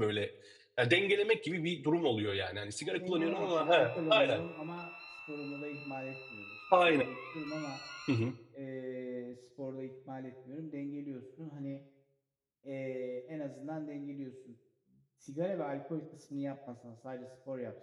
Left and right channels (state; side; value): identical; both; correlation 1.00